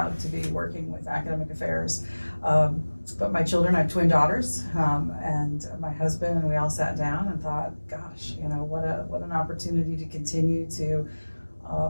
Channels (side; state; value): both; inverted; correlation -1.00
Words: to be working with academic affairs. But my children, I have twin daughters, and my husband, and we all sat down and thought, gosh, what an opportunity to continue to